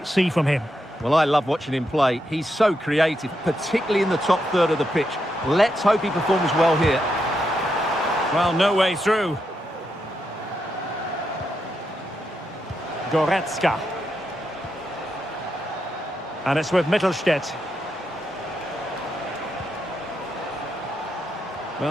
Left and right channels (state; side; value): normal; both; correlation 0.83